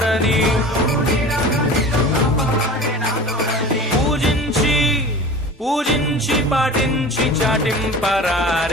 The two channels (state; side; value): normal; both; correlation 0.37